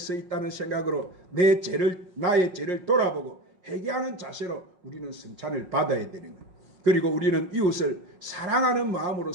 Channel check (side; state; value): left; late; 5.5 ms